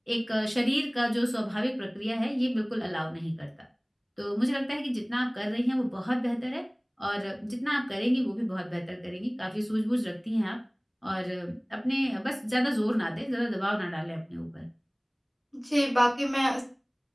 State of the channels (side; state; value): both; identical; correlation 1.00